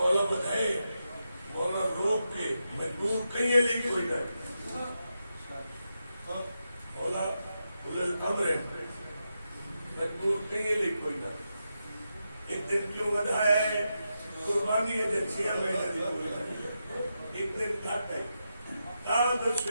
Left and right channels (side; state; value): both; inverted; correlation -0.87